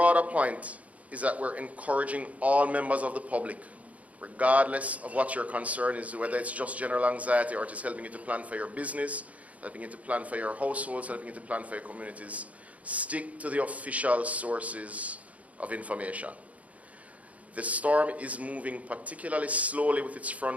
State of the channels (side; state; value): left; late; 0.068 ms